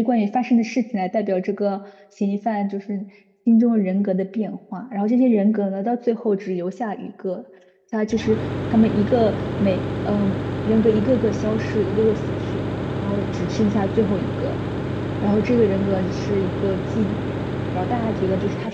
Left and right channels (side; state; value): both; identical; correlation 1.00